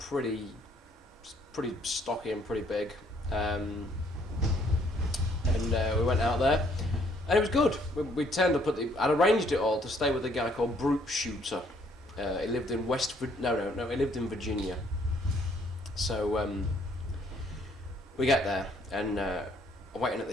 stocky and pretty big. And we went out there, and it was good. We turned up I'd arranged it all to stay with a guy called Brute Shooter. He lived in he lived in Virginia. So we get there, and waiting at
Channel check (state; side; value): normal; both; correlation 0.65